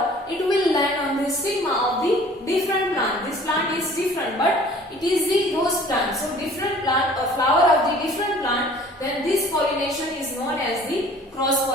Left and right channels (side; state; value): both; normal; correlation 0.50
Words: it will land on the stigma of the different plant. This plant is different, but it is the rose plant. So different plant or flower of the different plant, then this pollination is known as the cross